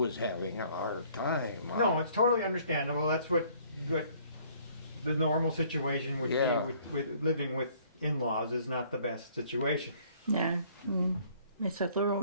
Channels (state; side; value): inverted; both; correlation -0.59